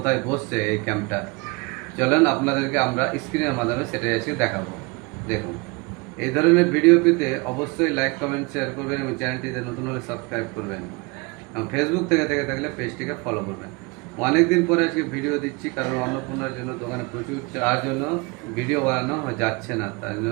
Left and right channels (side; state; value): left; quieter; 27.4 dB